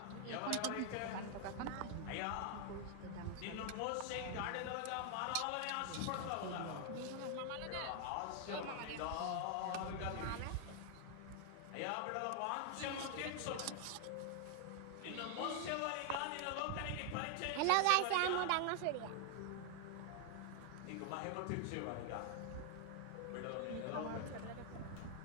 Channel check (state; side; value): different; both; correlation 0.00